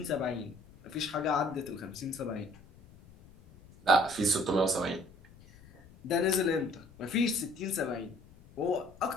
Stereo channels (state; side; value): noise; left; rumble, 23 dB below the sound